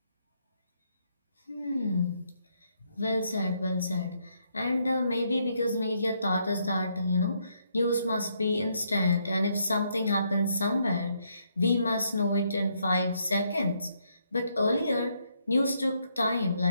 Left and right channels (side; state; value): both; inverted; correlation -0.74